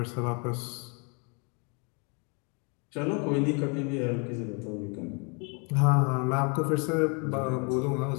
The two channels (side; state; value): right; quieter; 34.7 dB